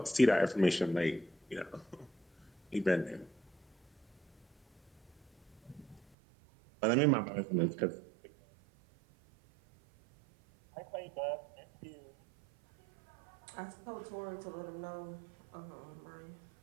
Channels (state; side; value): drops out; left; at 6.1 s